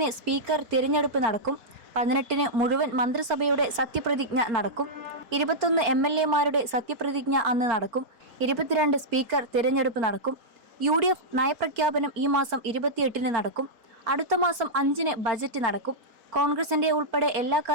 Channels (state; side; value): late; left; 4.4 ms